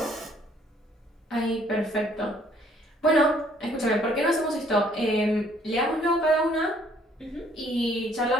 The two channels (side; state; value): both; normal; correlation 0.62